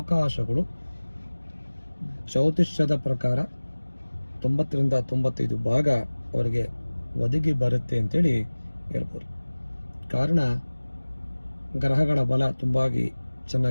ಜ್ಯೋತಿಷ್ಯದ ಪ್ರಕಾರ 90ರಿಂದ 95 ಭಾಗ ಅವರಿಗೆ ಒದಗಿ ಬರುತ್ತೆ ಅಂತೇಳಿ ಹೇಳ್ಬೋದು. ಕಾರಣ ಗ್ರಹಗಳ ಬಲ ತುಂಬಾಗಿ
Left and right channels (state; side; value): inverted; both; correlation -1.00